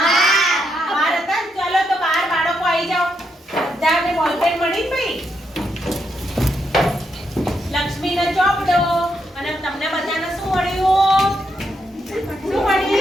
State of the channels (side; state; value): both; normal; correlation 0.80